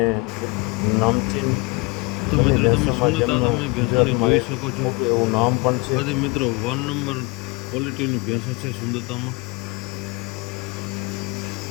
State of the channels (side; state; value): right; quieter; 26.8 dB